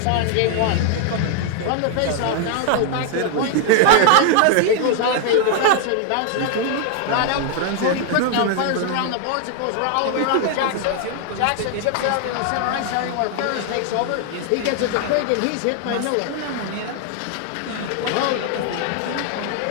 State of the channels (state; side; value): different; both; correlation 0.00